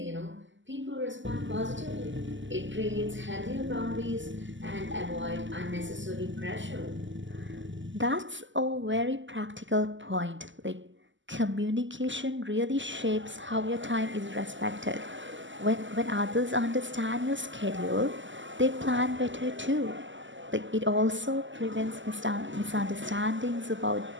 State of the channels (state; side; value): late; left; 0.54 ms